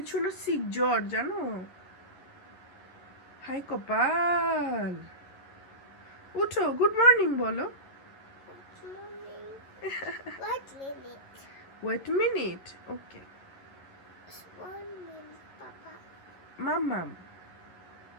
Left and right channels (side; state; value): right; late; 11 ms